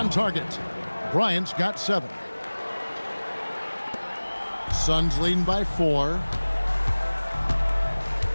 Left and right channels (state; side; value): inverted; both; correlation -1.00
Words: target. Bryant's got 7. Suns leading by 4.